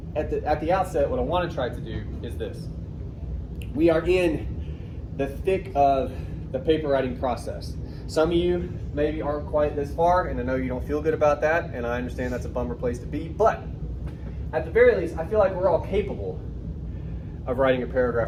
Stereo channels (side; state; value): both; identical; correlation 1.00